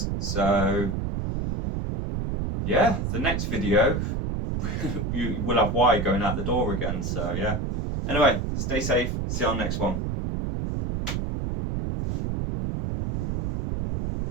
So yeah, the next video you will have wire going out the door again. So yeah, anyway, stay safe, see you on the next one.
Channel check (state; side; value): noise; right; rumble, 2 dB below the sound